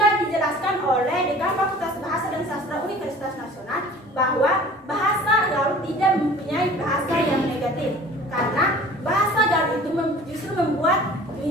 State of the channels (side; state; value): both; normal; correlation 0.46